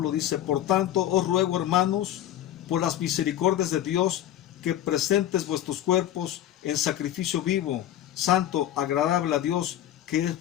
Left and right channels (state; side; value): quieter; right; 12.1 dB